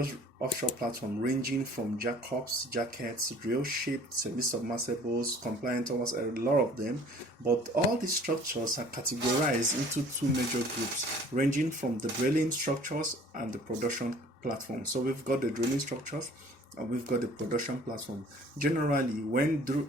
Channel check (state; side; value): normal; both; correlation 0.51